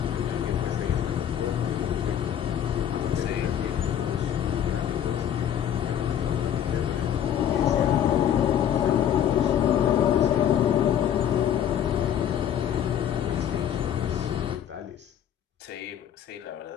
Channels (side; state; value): right; quieter; 9.7 dB